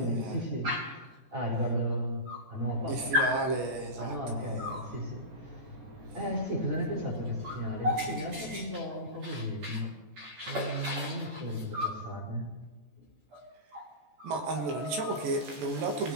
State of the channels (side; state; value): left; late; 14 ms